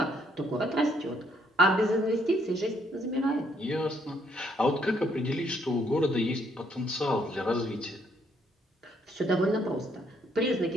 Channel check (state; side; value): normal; both; correlation 0.70